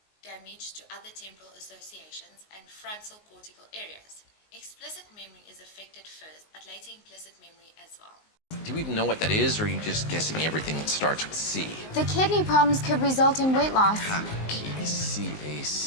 damage to other temporal associations and frontal cortical areas. Explicit memory is affected first, but later implicit memory as well. Do you even know what that is, or are you just guessing everything that starts with C? The kidney problems could result in weight loss.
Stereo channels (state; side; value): late; right; 19 ms